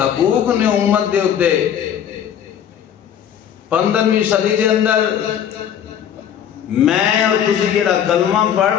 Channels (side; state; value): right; quieter; 9.3 dB